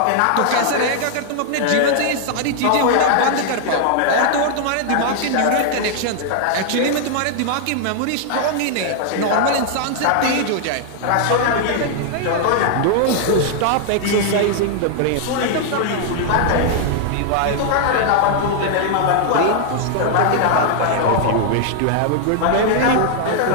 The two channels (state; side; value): different; both; correlation 0.00